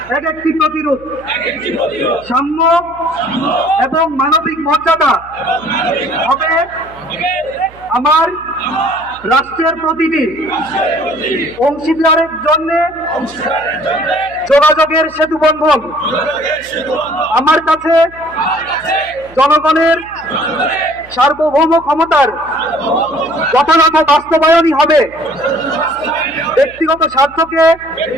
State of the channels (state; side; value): noise; right; hum, 23 dB below the sound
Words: এক একটি প্রতিরোধ, সাম্য এবং মানবিক মর্যাদা হবে আমার রাষ্ট্রের প্রতিটি অংশীদারের জন্য যোগাযোগের সেতু বন্ধন। আমার কাছে জনগণের সার্বভৌম ক্ষমতার যথাযথ বাস্তবায়নই হবে ব্যক্তিগত স্বার্থকে